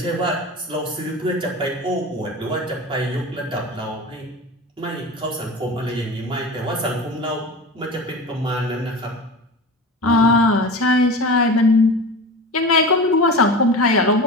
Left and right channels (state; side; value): normal; both; correlation 0.31